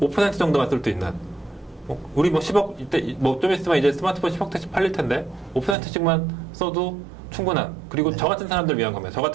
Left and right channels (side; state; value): left; drops out; at 5.8 s